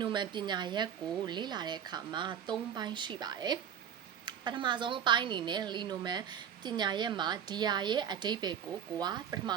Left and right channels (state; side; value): quieter; left; 8.6 dB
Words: နိုမန်ပညာရပ်ကိုလေ့လာတဲ့အခါမှာ၃ပိုင်းရှိပါတယ်ပထမဆုံးအပိုင်းအနေနဲ့လီနိုမန်ပညာရပ်မှာဒီယာရဲ့အဓိပ္ပာယ်ကိုကပထမ